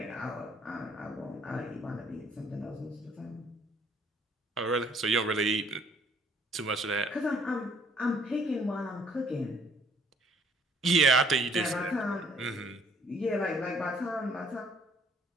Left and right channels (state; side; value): normal; both; correlation 0.60